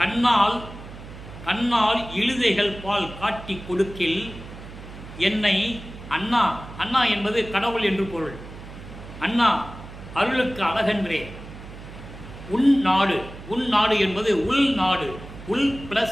கண்ணால் இழுதைகள் பால் காட்டி கொடுக்கில் என்னை அண்ணா, அண்ணா என்பது கடவுள் என்று பொருள். அண்ணா அருளுக்கு அழகன்றே. உன் நாடு என்பது உள் நாடு, உள்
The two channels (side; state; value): right; noise; hum, 14 dB below the sound